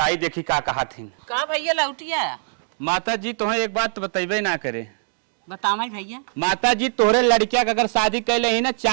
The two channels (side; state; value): left; silent; digital silence